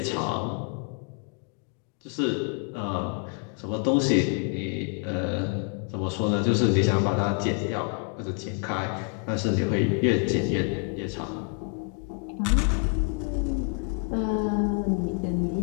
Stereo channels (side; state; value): right; quieter; 35.3 dB